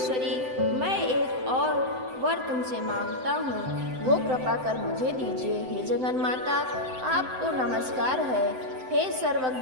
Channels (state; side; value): late; left; 7.8 ms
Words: मैं एक और वर तुमसे मांगता हूँ, वो कृपा कर मुझे दीजिए। हे जगन माता, आपको नमस्कार है। हे